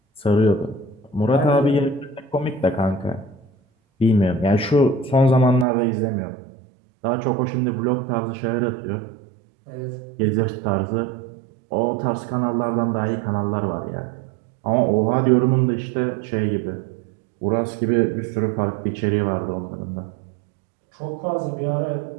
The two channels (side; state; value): left; drops out; at 5.7 s